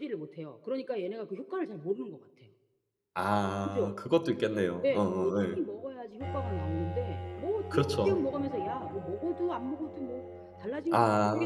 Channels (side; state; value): both; identical; correlation 1.00